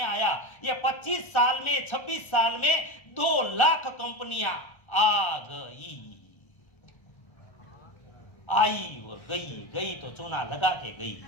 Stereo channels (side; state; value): right; late; 1.3 ms